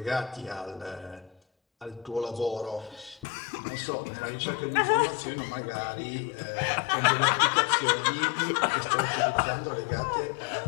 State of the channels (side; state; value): right; drops out; at 3.2 s